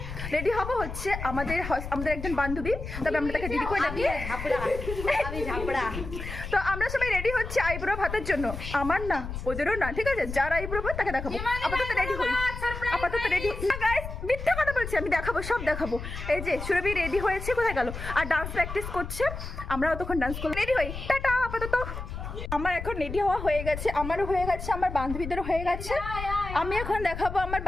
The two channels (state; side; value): noise; left; rumble, 8 dB below the sound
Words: রেডি হবো হচ্ছে আমাদের একজন বান্ধবী, তবে আমরা তাকে দিদি করে ডাকি। তো আমরা সবাই রেডি হচ্ছি আইব্রো ভাতের জন্য, আমার না ওদেরও না, ঠিক আছে? যার আইব্রো ভাত তাকে দেখাবো। আপাতত রেডি হই, আপাতত রেডি না গাইস, মিথ্যা কথা বলছি, আমি দেখাবো, সব দেখাবো। এই যে সুরভি রেডি হয়েছে, কোথায় গেল? আর ডান্স প্র্যাকটিস করছে, আমরাও তখন ডান্স করবো। রেডি হই, টাটা। আপাতত আমার এখন রেডি হওয়া হয়ে গেছে, আমারও হয়ে গেছে, আমার বান্ধবীদেরও হয়ে গেছে। আমি এখন দেখাবো আমার